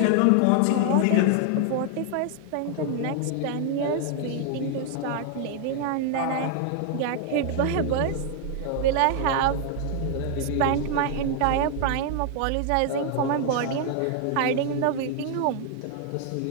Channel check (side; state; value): both; different; correlation 0.00